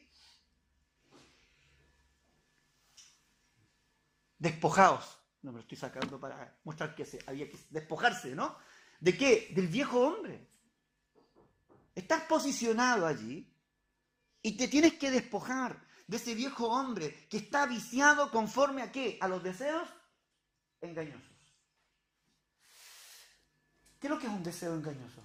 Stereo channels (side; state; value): both; identical; correlation 1.00